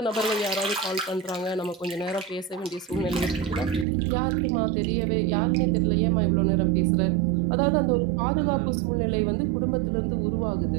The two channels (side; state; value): left; drops out; at 3.9 s